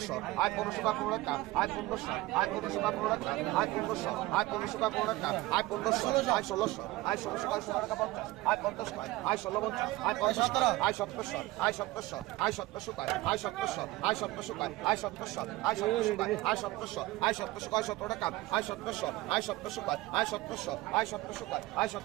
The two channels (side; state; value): left; quieter; 18.7 dB